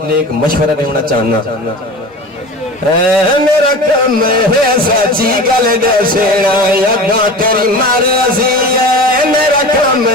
نیک مشورہ دینا چاہنا میرا کم ہے سچی گل دسنا یگاں تیری مرضی ہے میرا کم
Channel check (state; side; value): normal; both; correlation 0.34